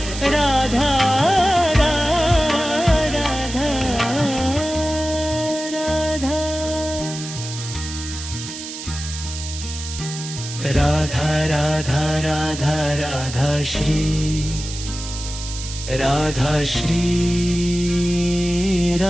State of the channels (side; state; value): right; noise; hiss, 9 dB below the sound